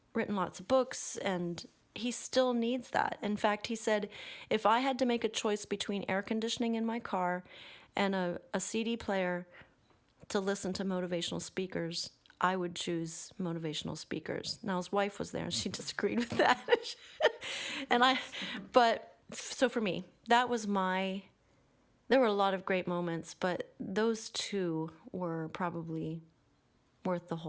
written lots of books, and he still needs that. In fact, he said, if I had to make a choice between air conditioning in my car and a CD player to listen to motivational speakers, I would choose motivational speakers. Now, his wife was there and she disagreed with that. So for me, that was there were a lot of great moments, but those two were probably worth the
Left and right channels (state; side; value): identical; both; correlation 1.00